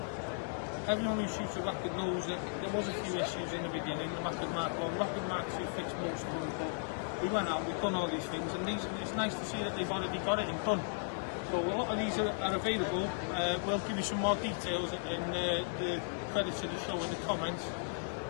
Everyone who shoots a Rapid knows that there was a few issues in the beginning. The Rapid Mark I, Rapid Mark II fixed most of them, but we went out, we've done all these things, and it's nice to see that they've already got it and done. So a lot of these are available. We'll give you some more details in the credits of the show in the comments,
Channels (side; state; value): right; silent; 54 dB below the other